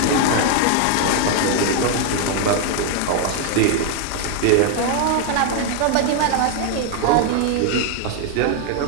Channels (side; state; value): both; different; correlation 0.00